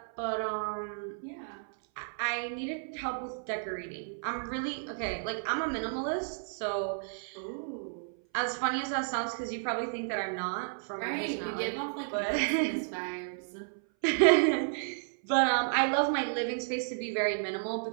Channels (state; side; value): silent; left; 56 dB below the other